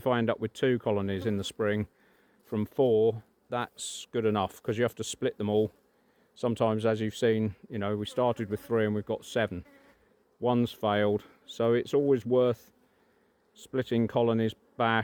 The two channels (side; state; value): both; identical; correlation 1.00